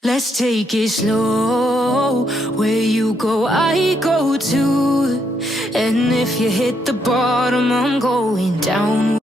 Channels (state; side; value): normal; both; correlation 0.76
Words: Let's take it slow. Where you go, I go too. And if you hit the bottom, I'm going down.